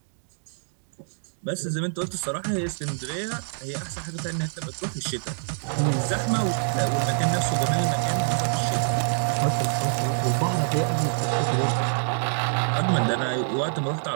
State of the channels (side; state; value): left; silent; digital silence